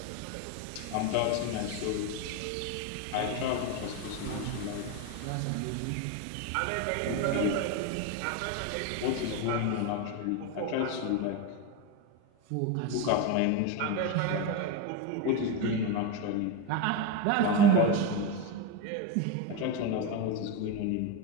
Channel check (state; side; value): different; both; correlation 0.04